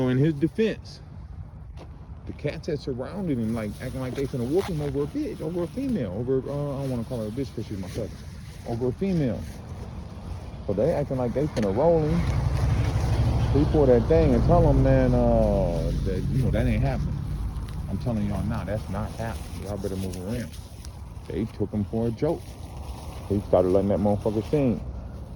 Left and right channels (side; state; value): both; identical; correlation 1.00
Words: in his defense, the cats had surrounded him, like acting like they finna whoop him over a bitch, over a female, over, I don't want to call her a bitch because she's my cousin, over a female. So they acting like they finna roll him. He pull that thing and tell them, man, that, you know, that ain't happening. I'm telling y'all now, that's not happening. Y'all better move around. They took him for a joke. He started letting that motherfucker sing.